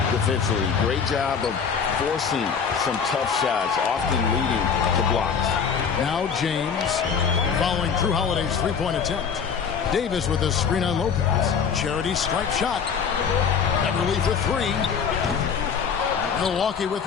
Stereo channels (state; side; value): quieter; right; 6.6 dB